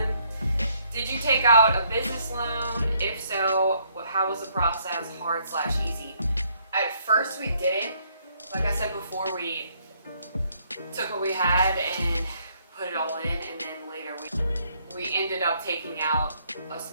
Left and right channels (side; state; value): both; inverted; correlation -0.69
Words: Did you take out a business loan? If so, how was the process, hard/easy? At first we didn't. Like I said before, we took what we had and put it all in, and then later we ended up taking out a